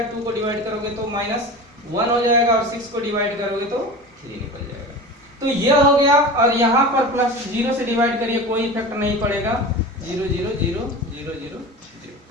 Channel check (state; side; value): normal; both; correlation 0.32